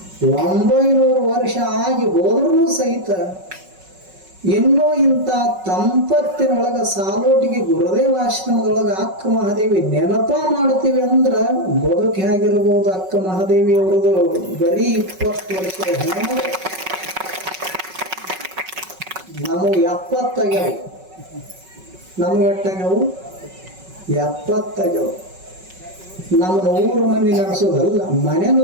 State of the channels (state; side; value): late; left; 5.4 ms